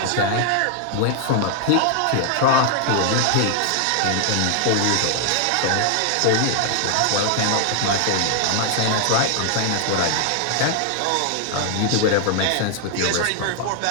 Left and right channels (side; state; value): both; different; correlation 0.00